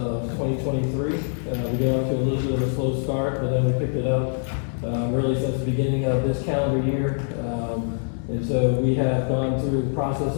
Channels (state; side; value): silent; right; digital silence